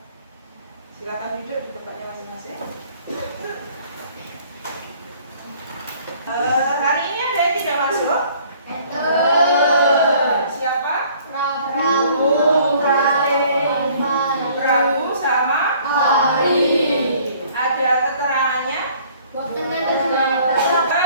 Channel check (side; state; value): both; inverted; correlation -0.56